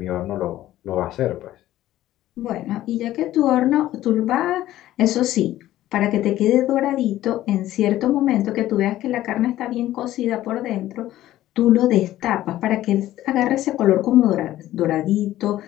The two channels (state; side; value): quieter; right; 14.2 dB